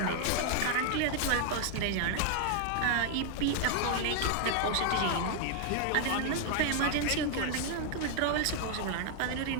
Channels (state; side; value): different; both; correlation 0.00